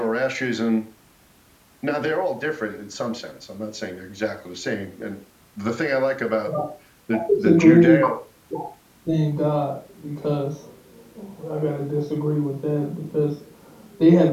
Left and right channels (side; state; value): both; identical; correlation 1.00